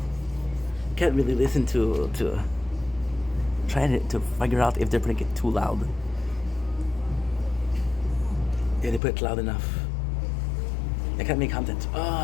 can't really listen to trying to figure out if they're putting it too loud. Yeah, they put it loud enough. I can't make content.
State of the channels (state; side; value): drops out; right; at 9.0 s